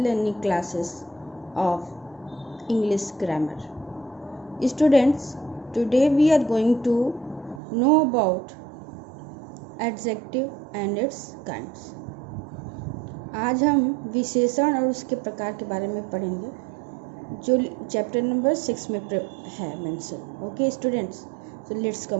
classes of English grammar. Students, today we are going to know about adjective and its kinds. आज हम विशेषण और उसके प्रकार के बारे में पढ़ेंगे जो चैप्टर नंबर 6 में है mention. Okay students, so let's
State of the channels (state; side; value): drops out; left; at 7.6 s